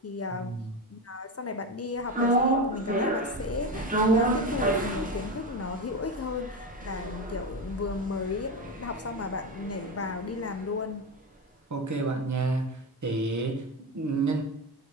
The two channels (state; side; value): normal; both; correlation 0.18